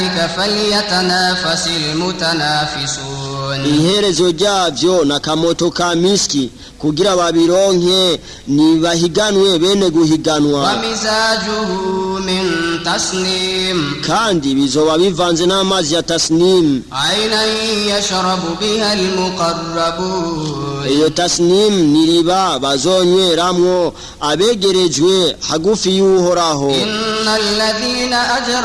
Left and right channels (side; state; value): both; identical; correlation 1.00